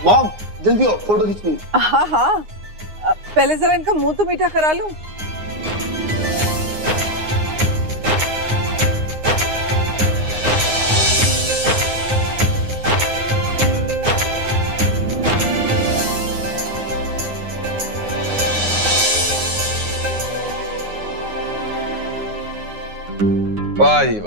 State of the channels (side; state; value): left; late; 9.6 ms